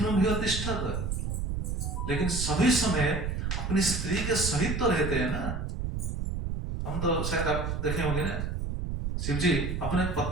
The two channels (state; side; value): noise; right; rumble, 2 dB below the sound